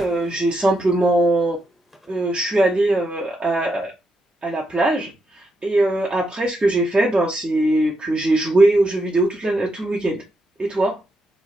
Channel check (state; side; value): normal; both; correlation 0.82